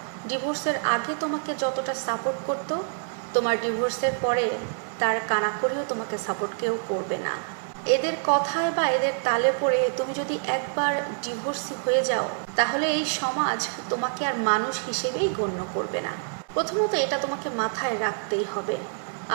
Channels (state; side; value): silent; left; digital silence